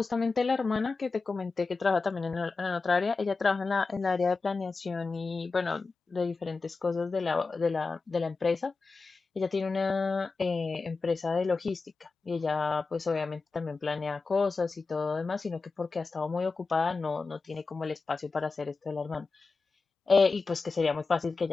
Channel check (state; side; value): quieter; right; 4.2 dB